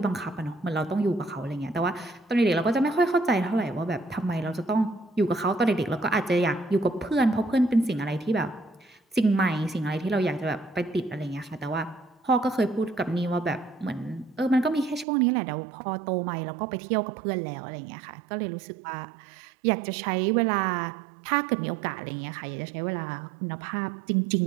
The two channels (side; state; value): left; drops out; at 15.1 s